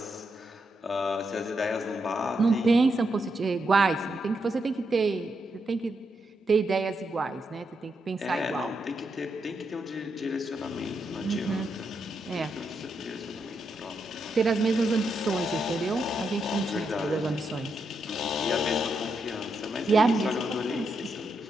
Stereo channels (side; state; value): both; normal; correlation 0.82